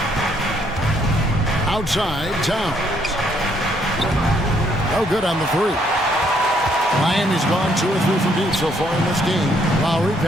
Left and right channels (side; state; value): both; normal; correlation 0.69